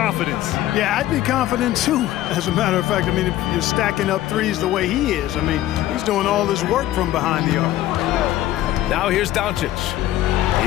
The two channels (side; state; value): right; quieter; 14.1 dB